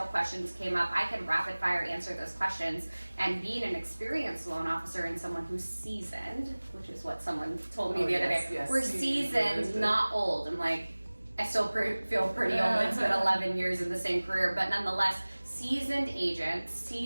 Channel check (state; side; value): inverted; both; correlation -1.00